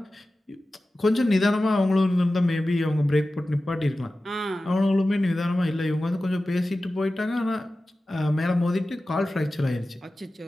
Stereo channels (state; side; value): normal; both; correlation 0.95